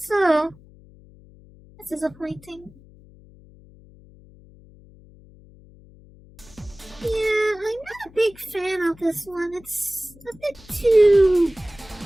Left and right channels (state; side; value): noise; left; hum, 24 dB below the sound